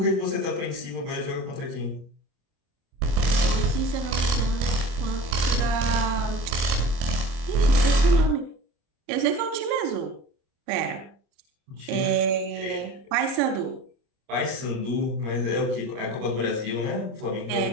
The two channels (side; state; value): left; late; 26 ms